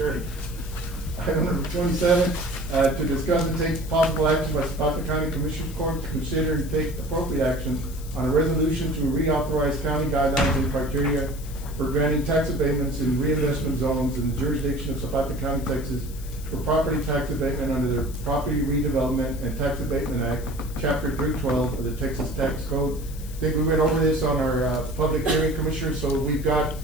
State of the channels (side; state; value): left; noise; hiss, 18 dB below the sound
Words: Item number 27, to discuss and take possible action by Zapata County Commissioners Court to consider and take appropriate action on a resolution to reauthorize county guidelines and criteria for granting tax abatements in reinvestment zones in the jurisdiction of Zapata County, Texas, for property tax abatement under the Property Redevelopment and Tax Abatement Act, Chapter 312 of the Texas Tax Code. I think we went over this on our public hearing, Commissioner, so we've got